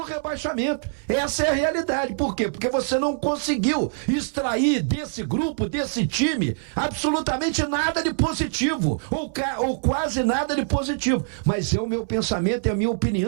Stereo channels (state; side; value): silent; left; 63 dB below the other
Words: Essa é a realidade. Por quê? Porque você não conseguiu extrair desse grupo, desse time, absolutamente nada de positivo, ou quase nada de positivo. Mas é o meu pensamento, é a minha